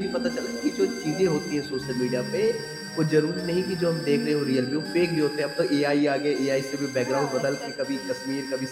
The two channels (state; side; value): identical; both; correlation 1.00